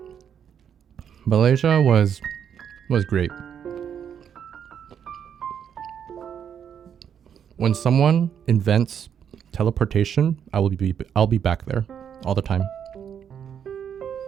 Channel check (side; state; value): left; quieter; 8.3 dB